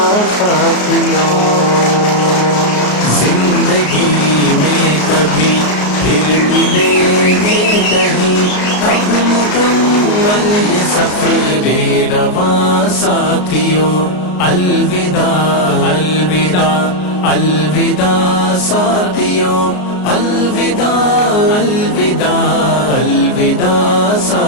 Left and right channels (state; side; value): late; right; 33 ms